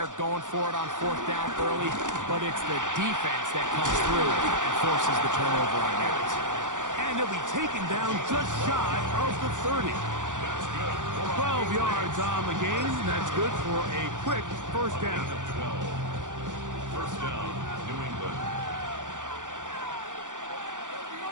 going for it on fourth down early. But it's the defense that comes through and forces the turnover on downs. And he'll be taken down just shy of the 30. 12 yards on the game. That's good for a quick first down. First down, New England.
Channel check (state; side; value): late; left; 0.87 ms